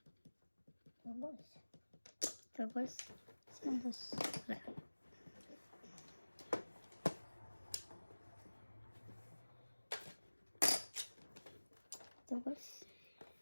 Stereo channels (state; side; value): inverted; both; correlation -1.00